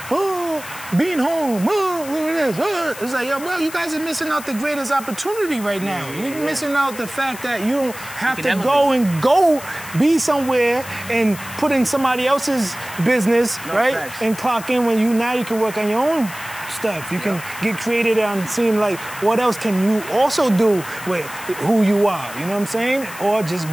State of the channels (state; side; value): noise; left; hiss, 14 dB below the sound